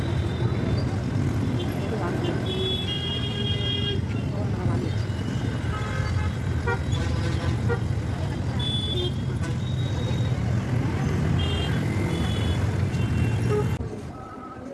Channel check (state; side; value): identical; both; correlation 1.00